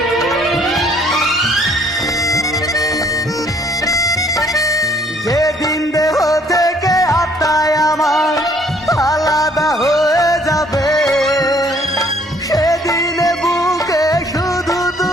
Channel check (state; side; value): normal; both; correlation 0.61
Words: যেদিন দেহ থেকে আত্মায় আমার আলাদা হয়ে যাবে, সেদিনে বুকে শুধু